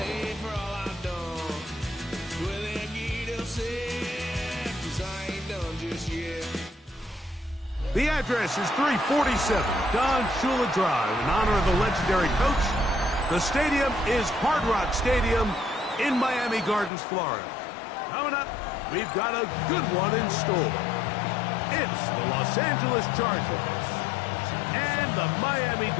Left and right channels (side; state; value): right; drops out; at 16.9 s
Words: for all I've done. Well, they get upset, 'cause I ain't done just yet. The address is 347 Don Shula Drive in honor of the legendary coach. The stadium is Hard Rock Stadium in Miami Gardens, Florida. Coming up, we've got a good one in store. It's the Los Angeles Chargers and the Miami